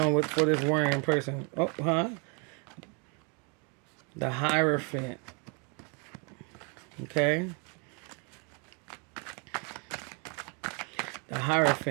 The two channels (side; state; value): left; quieter; 34.8 dB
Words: for this worrying person? Oh, huh? The Hierophant. Okay. The